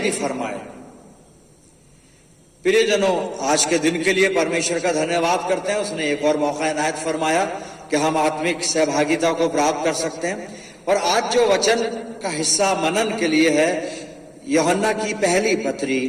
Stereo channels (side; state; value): both; identical; correlation 1.00